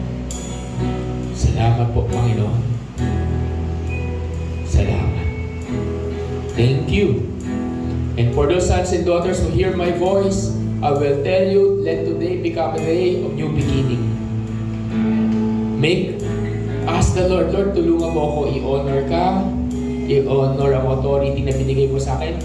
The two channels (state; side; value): identical; both; correlation 1.00